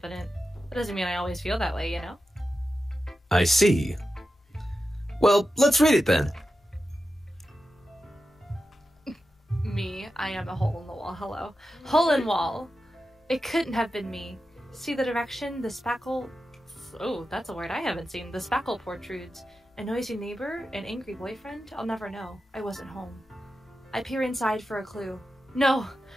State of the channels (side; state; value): both; normal; correlation 0.91